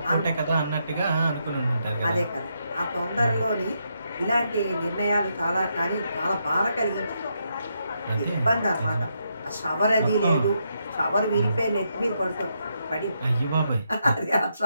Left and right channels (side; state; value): both; inverted; correlation -0.80